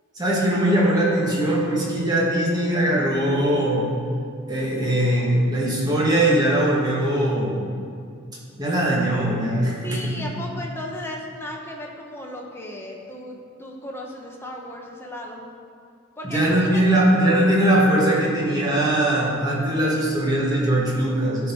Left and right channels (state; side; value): normal; both; correlation 0.51